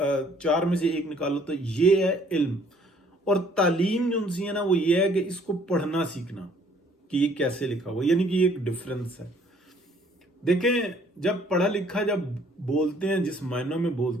चार में से एक निकालो तो ये है इल्म। और तालीम जो उनसी है ना, वो ये है कि इसको पढ़ना सीखना कि ये कैसे लिखा हुआ, यानी कि एक डिफरेंस है। देखें, जब पढ़ा लिखा जब बोलते हैं, जिस मायनों में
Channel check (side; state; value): both; normal; correlation 0.60